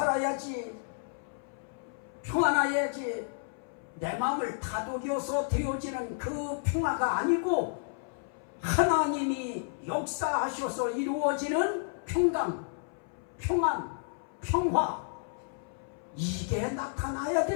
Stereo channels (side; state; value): right; silent; 57 dB below the other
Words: 평안해야지, 내 마음을 다독여서 되어지는 그 평화가 아니고 하나님이 역사하셔서 이루어지는 평강, 평안, 평화, 이게 나타나야